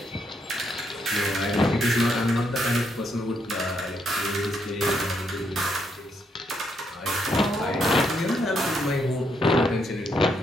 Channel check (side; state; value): both; normal; correlation 0.76